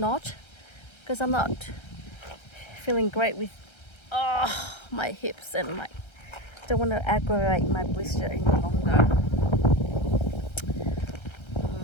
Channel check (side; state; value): right; late; 1.3 ms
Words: because I'm not feeling great with my hips, and my don't want to aggravate my blister any longer.